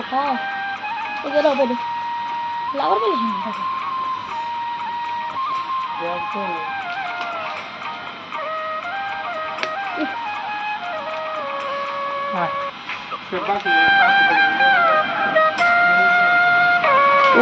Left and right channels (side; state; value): both; identical; correlation 1.00